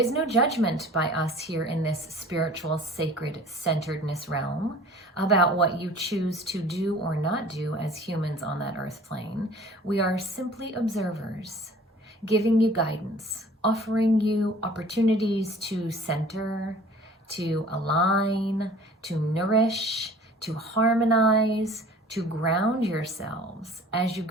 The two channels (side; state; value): both; normal; correlation 0.48